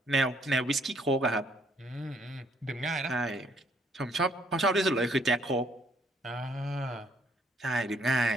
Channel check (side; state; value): both; normal; correlation 0.66